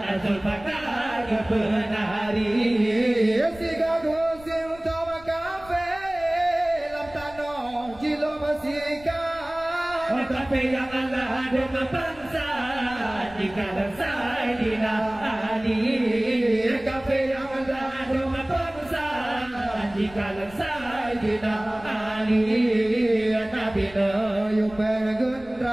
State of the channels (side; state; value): left; noise; rumble, 21 dB below the sound